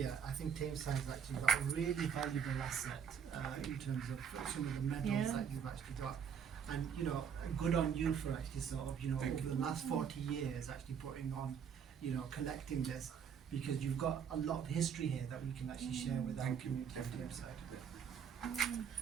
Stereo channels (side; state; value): left; quieter; 7.4 dB